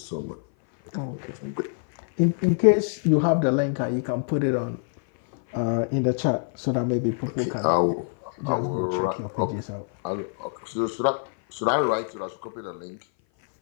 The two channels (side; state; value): right; silent; 57 dB below the other